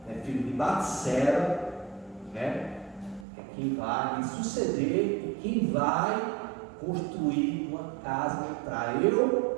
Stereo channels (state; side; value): drops out; left; at 3.2 s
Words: filho de Batseba, né, é quem vai me suceder e quem vai construir uma casa para